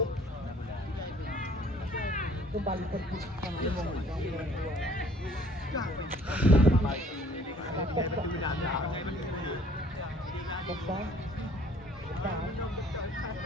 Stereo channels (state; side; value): normal; both; correlation 0.56